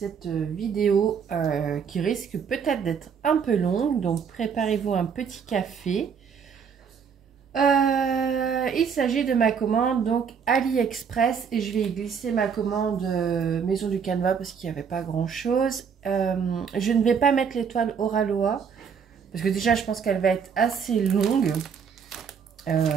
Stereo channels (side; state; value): left; quieter; 6.7 dB